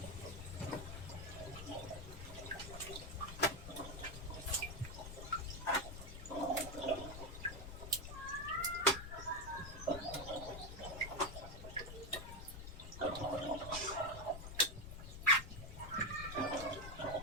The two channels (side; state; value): left; noise; rumble, 9 dB below the sound